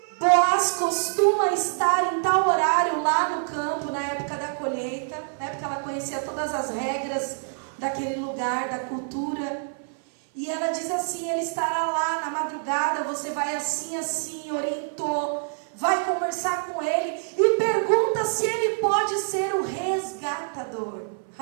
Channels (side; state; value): left; silent; 57 dB below the other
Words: Boaz costuma estar em tal horário lá no campo, na época da colheita, né, porque ela conhecia todas as regras daquele lugar, da cultura. E ela diz assim: ele estará lá na madrugada, você vai assim, assim, orientou, vai conversar com ele e pergunta se ele pode ser o resgatador.